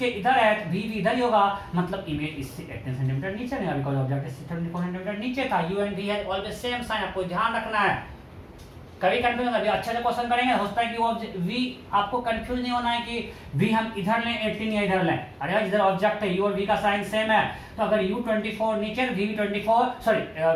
इधर है तो v भी इधर ही होगा, मतलब इमेज इससे 18 सेंटीमीटर नीचे नहीं, बिकॉज ऑब्जेक्ट इससे 24 सेंटीमीटर नीचे था। u and v have always same sign, आपको ध्यान रखना है। कभी कंफ्यूज अभी अच्छे से क्वेश्चन करेंगे, हो सकता है कि वो v आपको कंफ्यूज नहीं होना है कि v हम इधर लें 18 या इधर लें। अरे यार इधर ऑब्जेक्ट है, u और v का साइन सेम है, तो अगर u 24 नीचे, v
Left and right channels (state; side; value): identical; both; correlation 1.00